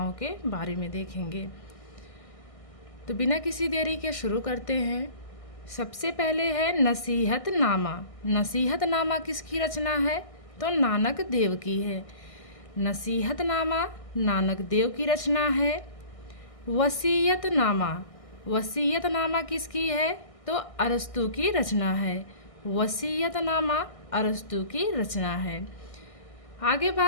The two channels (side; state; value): right; late; 1.6 ms